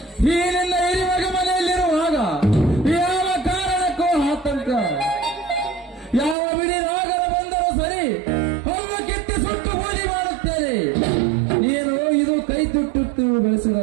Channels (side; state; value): left; drops out; at 6.4 s